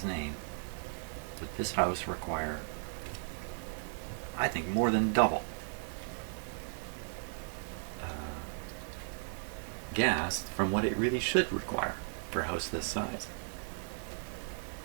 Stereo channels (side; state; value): left; silent; digital silence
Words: name would this house require, I think, more than double gas from what it really should require for a house this size.